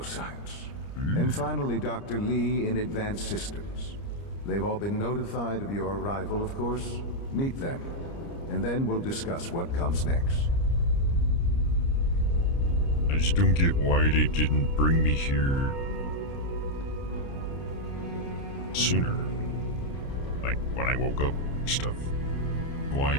And finally, Dr. Lee in advanced systems. They've all been notified of your arrival, of course. Meet them, and then we'll discuss what comes next. I just don't get why they didn't bring me here sooner. Like when I woke up and stuff. Why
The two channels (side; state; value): right; late; 30 ms